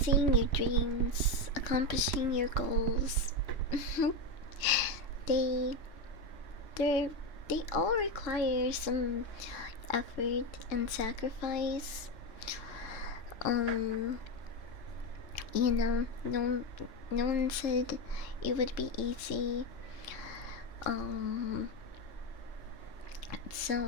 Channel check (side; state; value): right; late; 3.8 ms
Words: your dreams, accomplishing your goals. they they all require some effort and sacrifice. No one said it would be easy.